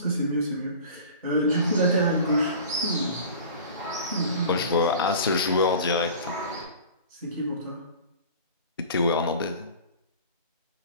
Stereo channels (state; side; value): inverted; both; correlation -0.40